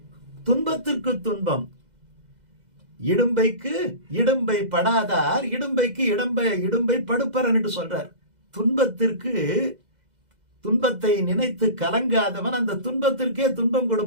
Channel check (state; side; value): late; left; 2.0 ms